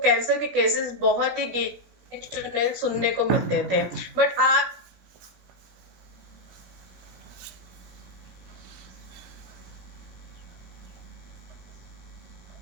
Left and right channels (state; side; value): late; left; 16 ms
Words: के केसेस बहुत ही गिने सुनने को मिलते थे। बट आज